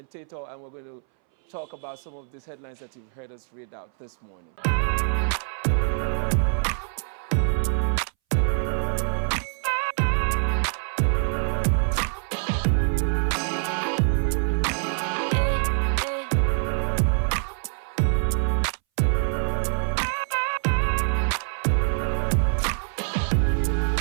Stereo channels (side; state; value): left; silent; 60 dB below the other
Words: and we're going to talk about some of these headlines that you've heard us read out this morning.